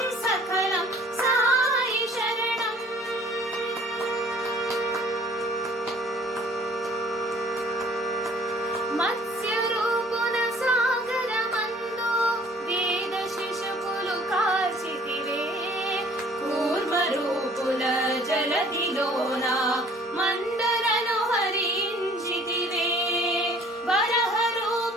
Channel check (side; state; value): both; normal; correlation 0.54